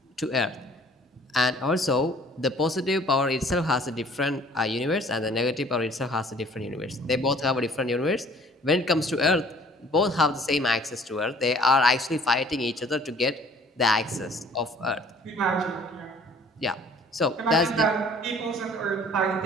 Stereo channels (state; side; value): normal; both; correlation 0.54